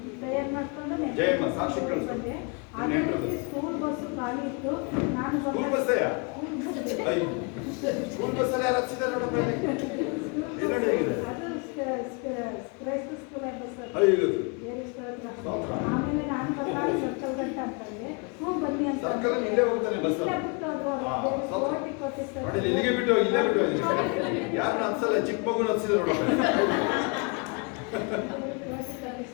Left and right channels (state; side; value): quieter; right; 33.4 dB